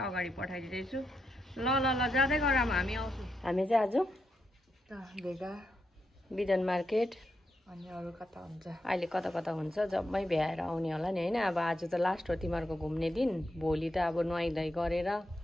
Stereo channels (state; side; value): normal; both; correlation 0.83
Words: अगाडि पठाइदिँदैछु ल ल ल जाँदै गरौँ हामी आउँछौँ हामी चाहिँ आज भेगा बिदन मार्केट अनि अरू कता हुन्छ अहिले कता कता हुन्छ जम्मै भ्याएर आउने होला नि हैन अब आज त लास्ट हो तिमीहरूको घुम्ने दिन भोलि त अब नुहाइधुवाइ गरेर